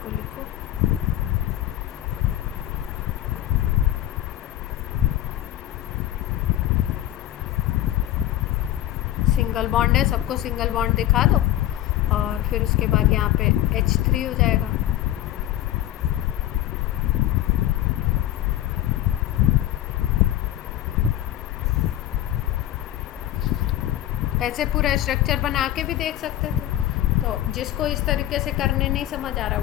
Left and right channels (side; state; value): right; quieter; 13.6 dB